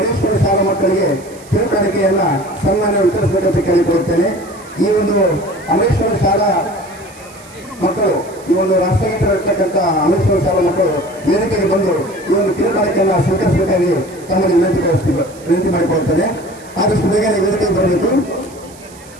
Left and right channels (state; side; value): noise; right; hiss, 23 dB below the sound